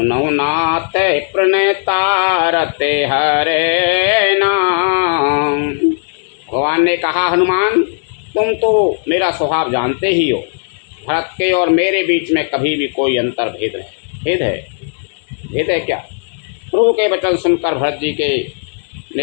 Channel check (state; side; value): silent; right; digital silence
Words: नाथ प्रणतारते हरेना। भगवान ने कहा, हनुमान तुम तो मेरा स्वभाव जानते ही हो। भरत के और मेरे बीच में कभी भी कोई अंतर भेद है क्या? प्रभु के वचन सुनकर भरत जी